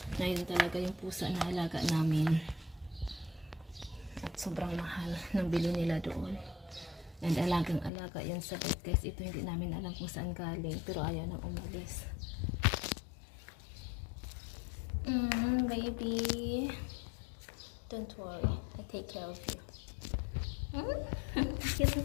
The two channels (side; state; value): right; drops out; at 7.9 s